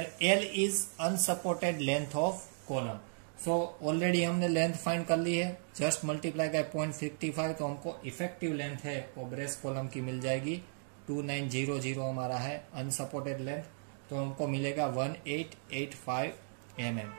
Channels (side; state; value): left; silent; digital silence